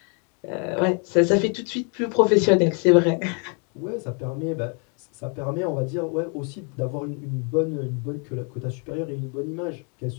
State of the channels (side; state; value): right; quieter; 37.9 dB